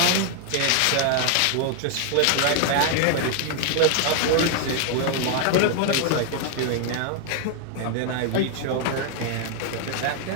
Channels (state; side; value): different; both; correlation 0.00